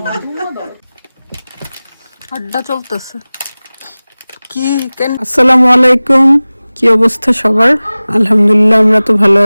আড্ডা চলতেছে কি আসসালামু আলাইকুম, কি অবস্থা সবার? আলহামদুলিল্লাহ আমরা তো ভালো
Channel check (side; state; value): both; inverted; correlation -0.98